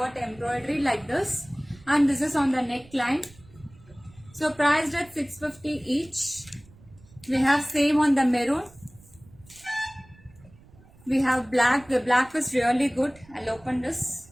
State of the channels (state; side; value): noise; right; rumble, 25 dB below the sound